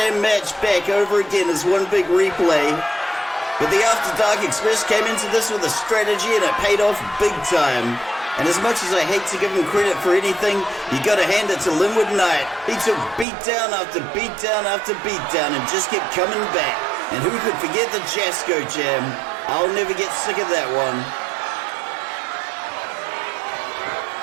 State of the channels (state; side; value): drops out; left; at 13.2 s